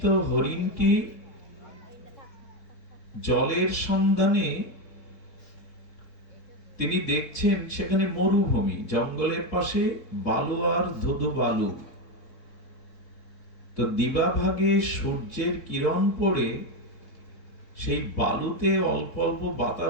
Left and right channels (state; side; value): late; right; 3.6 ms